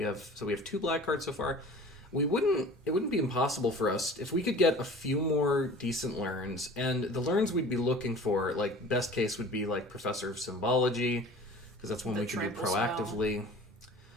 have 2 black cards so far. It wouldn't be impossible for us if we could get a few more decent learns, and the learns we'd be looking for, like, best case would be like Professor of Symbology, because that's one we can do proactively. Spell.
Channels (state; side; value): normal; both; correlation 0.43